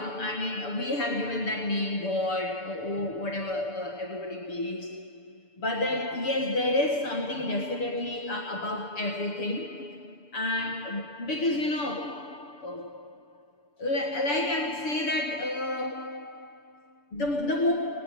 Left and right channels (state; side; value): late; right; 6.9 ms